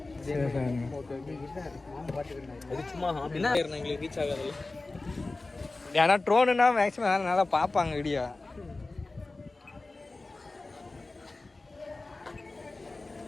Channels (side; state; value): right; quieter; 3.3 dB